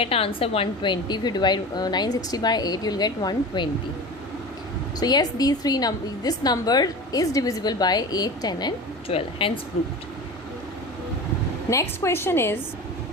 answer 120. If you divide 960 by 8, you will get 120. So yes, these three this number is divisible by 8, 10 and 12. Hence proved. Next question is,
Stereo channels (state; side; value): normal; both; correlation 0.32